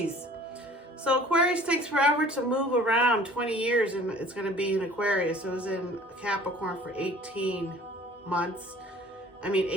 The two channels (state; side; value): normal; both; correlation 0.50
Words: So Aquarius takes forever to move around, 20 years, and it's going to be in Aquarius. It was in Capricorn for 18